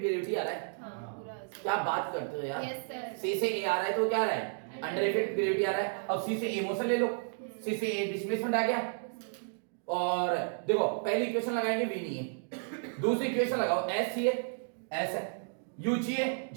आ रहा है। क्या बात करते हो यार, C से A आ रहा है तो क्या आ रहा है अंडर इफेक्ट ग्रेविटी आ रहा है। अब C से A मोशन ले लो, C से A डिस्प्लेसमेंट आ गया। और देखो पहली इक्वेशन लगाएंगे V नहीं है, दूसरी इक्वेशन लगाओ S चाहिए, S है, U चाहिए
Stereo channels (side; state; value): left; silent; digital silence